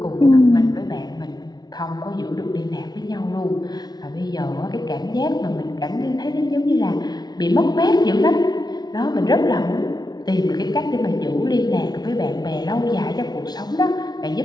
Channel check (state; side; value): late; right; 0.19 ms